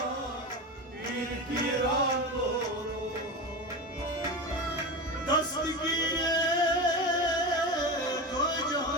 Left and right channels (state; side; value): normal; both; correlation 0.23